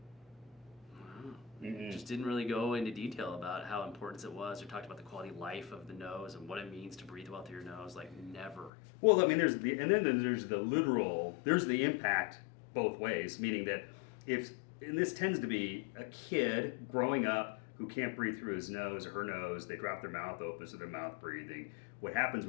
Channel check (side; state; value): right; drops out; at 8.7 s